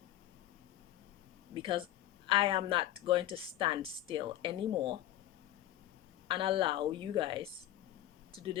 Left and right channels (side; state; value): right; quieter; 13.7 dB